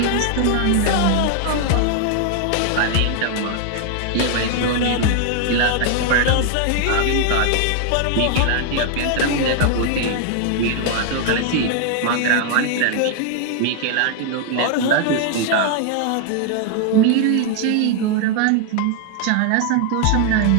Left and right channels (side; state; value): both; different; correlation 0.00